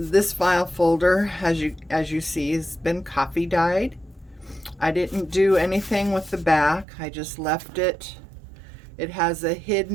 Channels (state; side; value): drops out; left; at 6.9 s